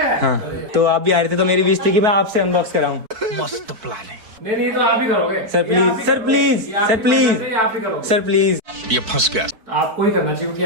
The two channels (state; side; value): late; left; 4.6 ms